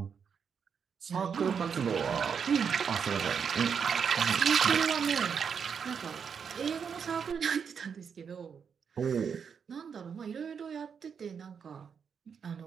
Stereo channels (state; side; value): quieter; left; 6.7 dB